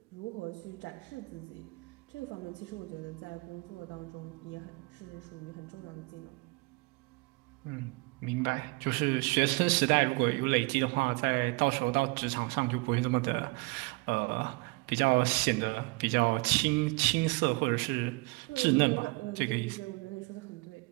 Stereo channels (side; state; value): left; quieter; 27.3 dB